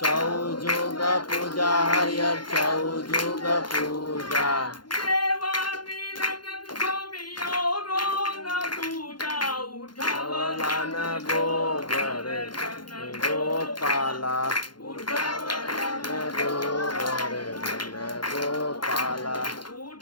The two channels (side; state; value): right; late; 0.71 ms